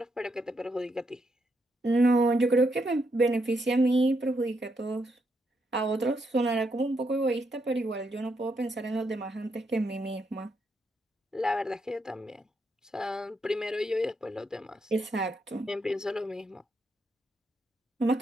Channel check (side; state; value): both; normal; correlation 0.79